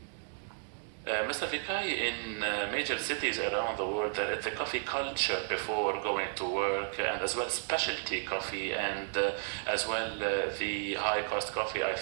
Mr. Vikai, in major cities around the world, there is the coffee culture before going to work, and as well specialty coffee, and as well the high cost coffee.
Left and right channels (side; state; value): left; silent; digital silence